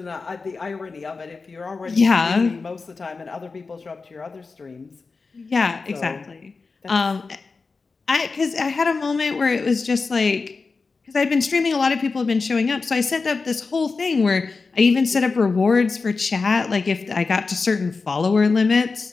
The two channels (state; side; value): quieter; right; 4.3 dB